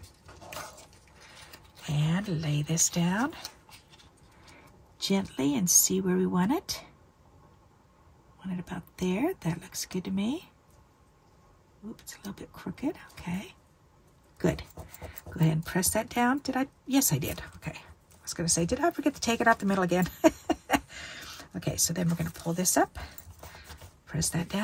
and lay this down gently and see where we want it. Want it about there. That looks good to me. Oops, it's a little bit crooked. Okay, good. Go ahead and press that down. Did I? Yes, I did. Okay. I was going to say, did I forget to take it out the middle again? Okay, so then we're going to pull this up. Press that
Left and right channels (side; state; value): both; identical; correlation 1.00